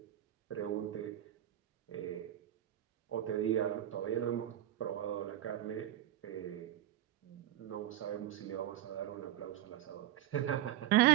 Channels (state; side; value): quieter; left; 13.1 dB